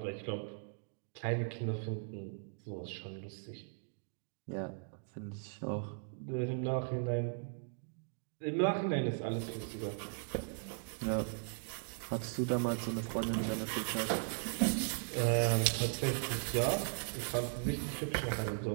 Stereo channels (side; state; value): left; silent; digital silence